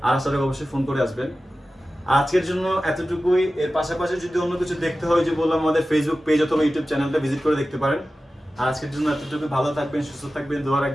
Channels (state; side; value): normal; both; correlation 0.95